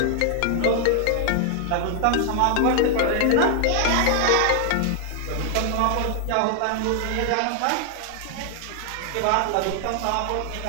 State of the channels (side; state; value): both; different; correlation 0.00